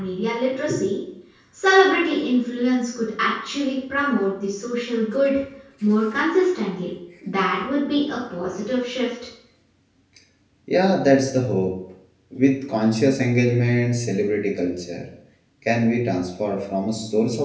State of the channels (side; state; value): both; identical; correlation 1.00